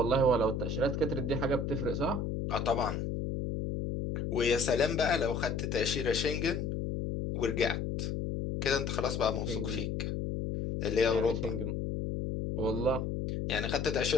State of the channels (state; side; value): noise; left; hum, 2 dB below the sound